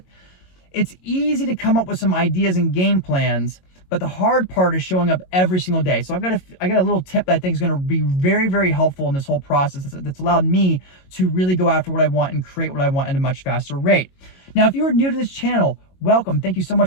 it's easy to come up with some ideas and game plans, but the hard part is showing up every single day. So I got a little tip that I think is going to be very, very helpful in this whole process that's allowed me to really go after what I want and create what I want at a much faster rate. Now, if you are new to this channel, welcome. Thank you so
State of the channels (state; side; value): late; right; 22 ms